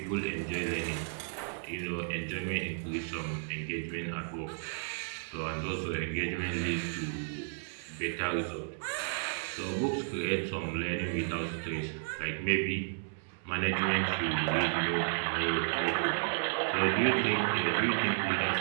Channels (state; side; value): silent; left; digital silence